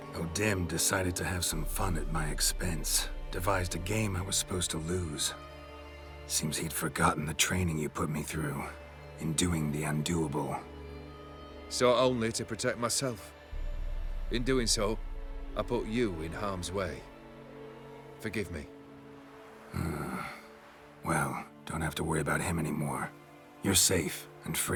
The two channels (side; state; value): both; identical; correlation 1.00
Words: O'Dim decided to have some fun at my expense. Devised a game I was supposed to lose. Seems he'd forgotten the training you put me through in doing the undoable. So only to protect myself. In doing so, I put you in harm's way. Forgive me. Well, don't have to worry about him anymore. You're safe and